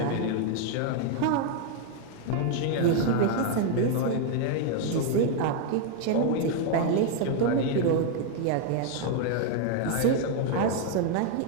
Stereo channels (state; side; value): different; both; correlation 0.01